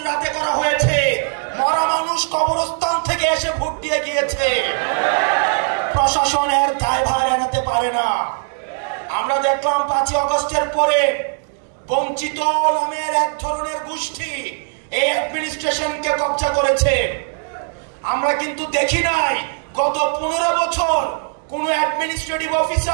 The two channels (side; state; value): left; silent; 57 dB below the other